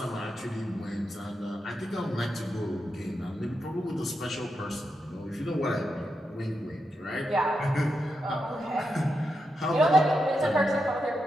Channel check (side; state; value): both; normal; correlation 0.86